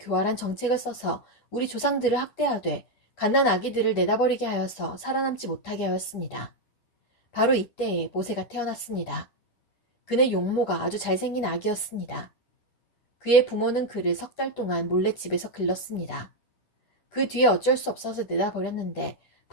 정책을 써서 우리 조상들을 학대하되 갓난 아기들을 내다버리게 하여서 살아남지 못하게 하였습니다. 바로 이때에 모세가 태어났습니다. 그는 용모가 아주 잘생긴 아기였습니다. 그의 부모는 그를 3달 동안 몰래 집에서 길렀습니다. 그 뒤에 어쩔 수 없어서 내다버렸는데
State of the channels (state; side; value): late; right; 9.8 ms